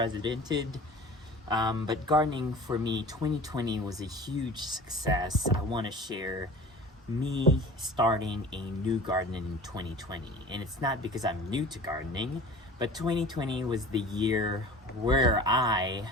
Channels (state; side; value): normal; both; correlation 0.41